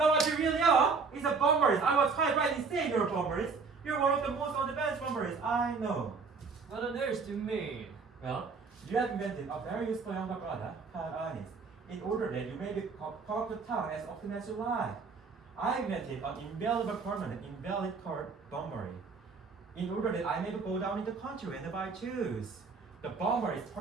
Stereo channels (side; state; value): left; quieter; 4.8 dB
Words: what you really are is a bomberist. I was quite right in saying you're a bomberist. You're one of the most on-the-bench bomberists I know. What on earth do you mean? Well, you have invented a very useful younger brother called Earnest, in order that you may be called to town as often as you like. I invented an invaluable permanent invalid card bombery, in order that I may go down in the country whenever I choose. The bomber is